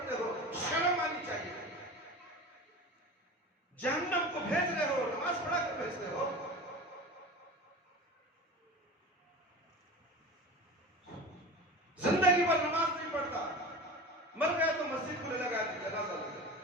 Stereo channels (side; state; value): both; normal; correlation 0.33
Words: ہو، شرم آنی چاہیے. جہنم کو بھیج رہے ہو، نماز پڑھا کر بھیجتے ہو. زندگی پر نماز نہیں پڑھتا، مر گیا تو مسجد کو لے لگا دی، جنازہ لگا.